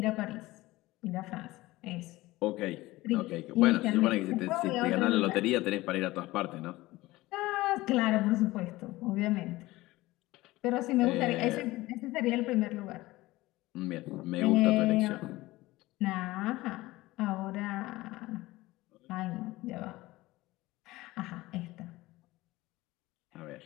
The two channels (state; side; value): quieter; right; 18.8 dB